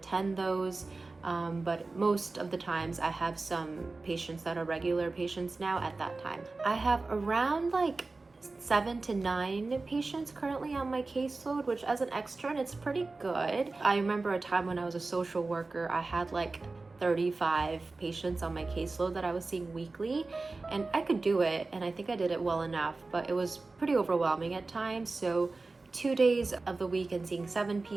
those. But most of the times I have some patients that are regular patients now at that time. I have around like 7 to 9 patients currently on my caseload, which as an extern, it's pretty good. I remember a time when I was a social worker, I had like 35 patients on my caseload that I was seeing weekly, and I could do it, and I think I did it well enough, but it was pretty overwhelming at times. So 2 days of the week and seeing 7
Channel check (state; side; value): quieter; left; 3.6 dB